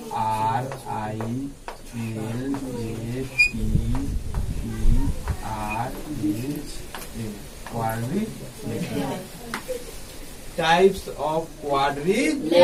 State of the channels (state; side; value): identical; both; correlation 1.00